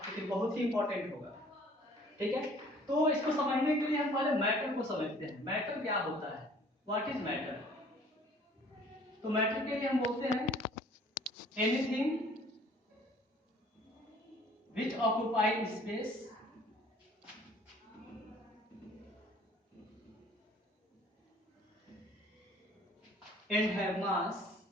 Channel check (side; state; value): both; normal; correlation 0.54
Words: बहुत ही इंपॉर्टेंट होगा। ठीक है, तो इसको समझने के लिए हम पहले मैटर को समझते हैं। मैटर क्या होता है? What is matter? तो मैटर के लिए हम बोलते हैं anything which occupy space and have mass